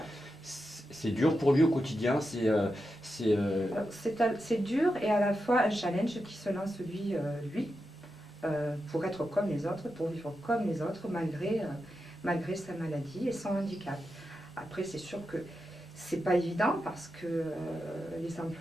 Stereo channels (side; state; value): both; normal; correlation 0.88